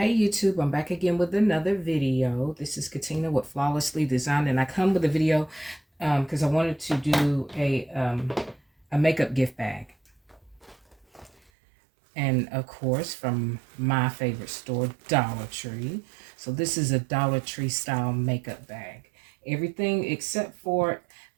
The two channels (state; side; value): drops out; left; at 11.5 s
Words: YouTube, I'm back again with another video. This is Katina with Flawlessly Designed, and I come with a video because I wanted to do a makeup gift bag. And of course, from my favorite store, Dollar Tree. So this is a Dollar Tree style makeup bag. Everything except for